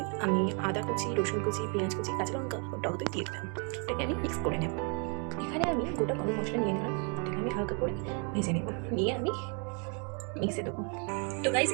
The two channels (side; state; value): left; quieter; 37.0 dB